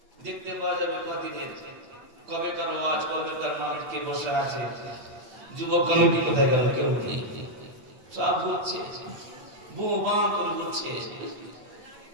দেখতে পাওয়া যাবে কদিনের কবেকার ওয়াজ, কবেকার মাহফিল কে বসে আছে, যুবক কমিটি কোথায় গেল কেউ নেই, সব ঘুরছে, বোবা করে ঘুরছে।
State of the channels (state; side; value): late; left; 9.0 ms